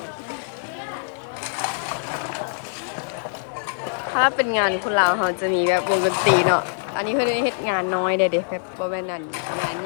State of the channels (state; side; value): silent; right; digital silence